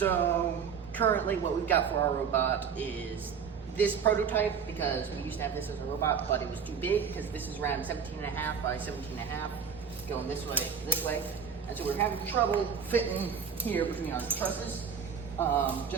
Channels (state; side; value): quieter; left; 6.8 dB